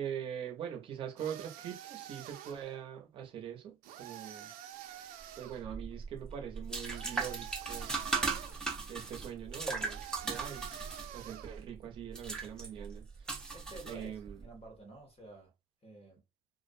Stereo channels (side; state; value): left; quieter; 5.5 dB